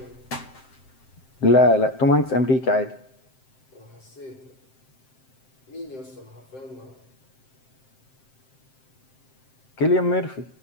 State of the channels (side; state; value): right; late; 7.7 ms